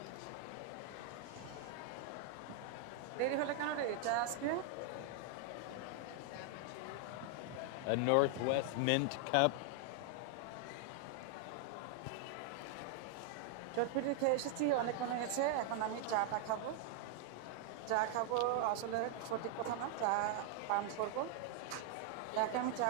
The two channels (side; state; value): both; different; correlation 0.00